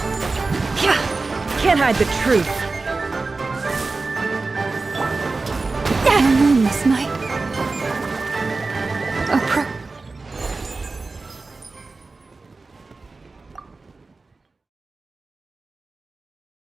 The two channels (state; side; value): quieter; left; 3.7 dB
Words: Can't hide the truth. This night.